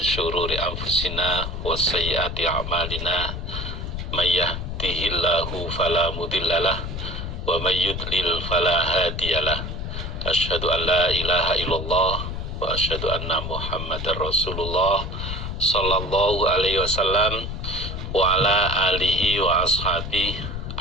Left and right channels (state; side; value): noise; left; rumble, 5 dB below the sound